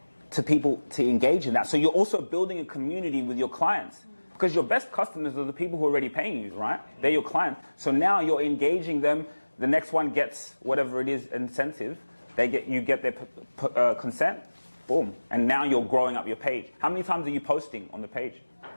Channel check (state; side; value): inverted; both; correlation -1.00